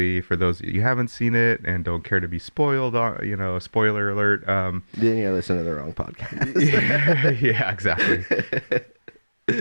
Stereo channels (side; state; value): both; inverted; correlation -1.00